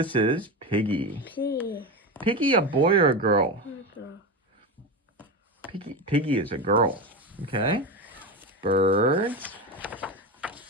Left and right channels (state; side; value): normal; both; correlation 0.19